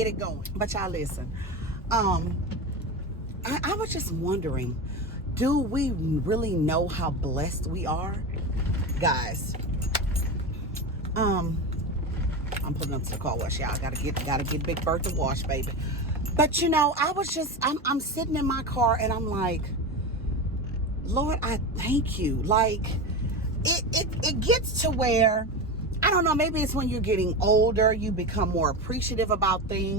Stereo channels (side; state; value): both; normal; correlation 0.22